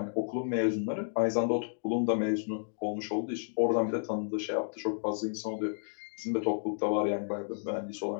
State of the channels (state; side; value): silent; right; digital silence